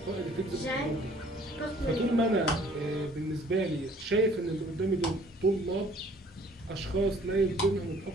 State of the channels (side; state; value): both; normal; correlation 0.56